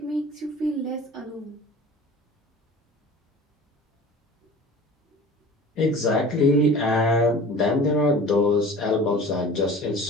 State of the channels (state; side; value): normal; both; correlation 0.42